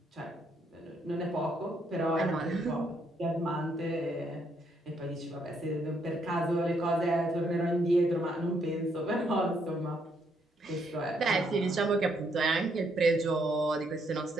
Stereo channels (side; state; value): both; normal; correlation 0.73